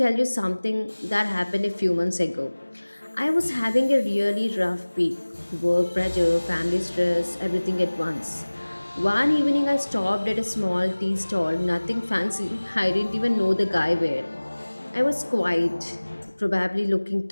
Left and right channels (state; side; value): inverted; both; correlation -1.00